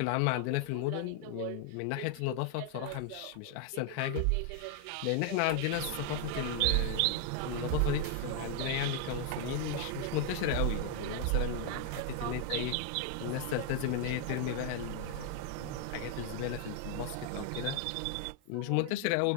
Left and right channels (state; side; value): different; both; correlation 0.00